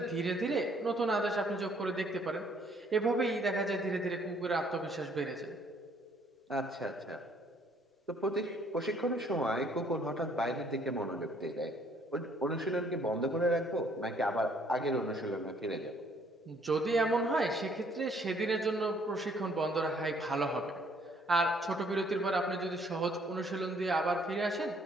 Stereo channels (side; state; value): both; normal; correlation 0.64